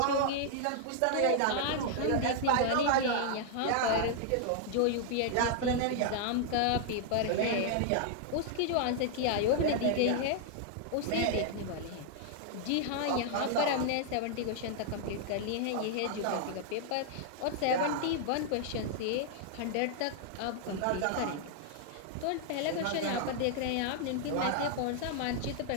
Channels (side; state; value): both; different; correlation -0.01